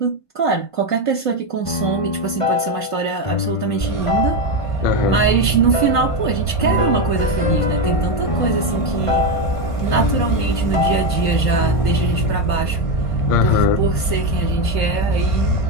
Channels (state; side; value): late; right; 1.5 ms